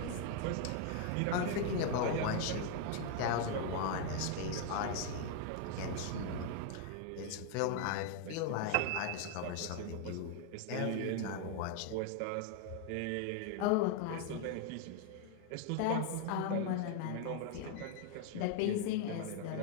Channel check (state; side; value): different; both; correlation 0.01